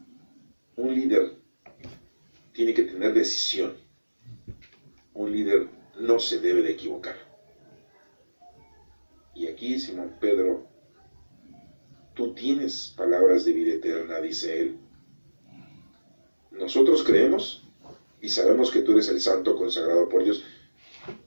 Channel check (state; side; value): inverted; both; correlation -1.00